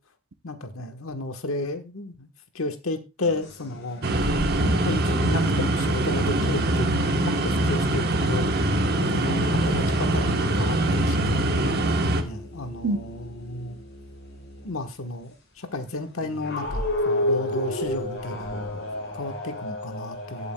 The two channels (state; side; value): normal; both; correlation 0.42